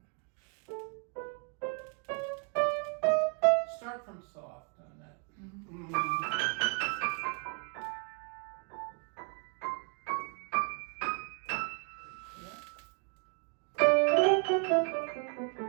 Start from soft on that.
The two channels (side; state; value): left; quieter; 38.8 dB